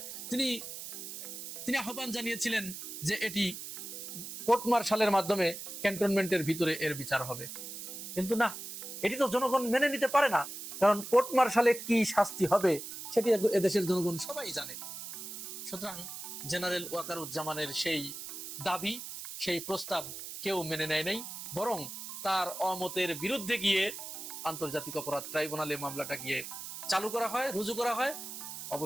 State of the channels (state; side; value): noise; right; hiss, 9 dB below the sound